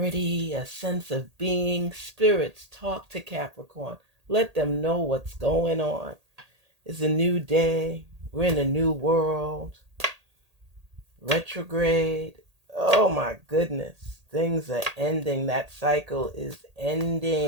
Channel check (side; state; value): left; late; 1.8 ms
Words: a sense of being? Spirits, talk to Capricorn. Let them know what's going on. It's a new day. We're in a new world. Retrograde. Oh my goodness. Things are ending. That cycle is